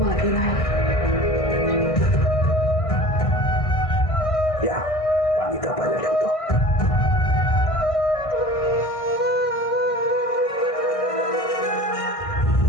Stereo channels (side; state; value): right; late; 1.6 ms